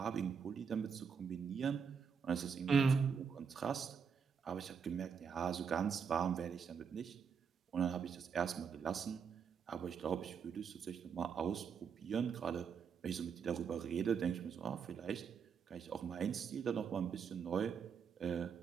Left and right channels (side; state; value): left; quieter; 6.5 dB